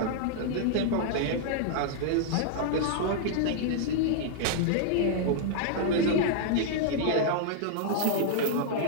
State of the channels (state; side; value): different; both; correlation -0.01